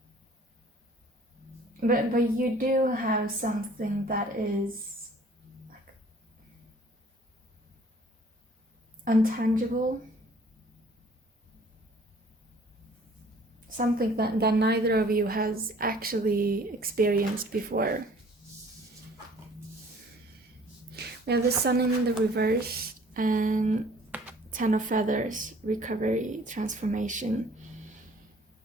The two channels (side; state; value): both; normal; correlation 0.54